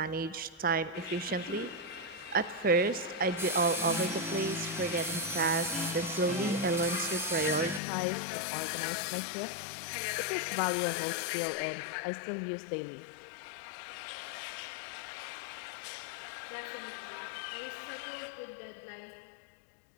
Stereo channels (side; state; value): right; drops out; at 7.8 s